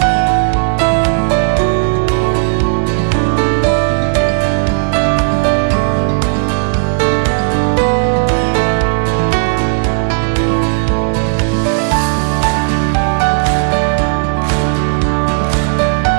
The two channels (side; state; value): left; silent; digital silence